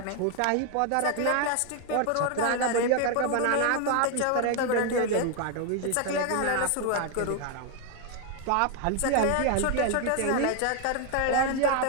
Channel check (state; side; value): different; both; correlation 0.00